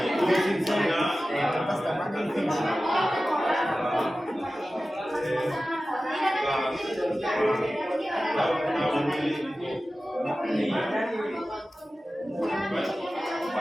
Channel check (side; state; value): both; normal; correlation 0.95